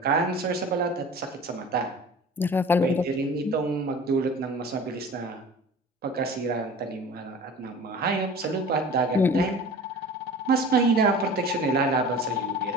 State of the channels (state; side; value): normal; both; correlation 0.40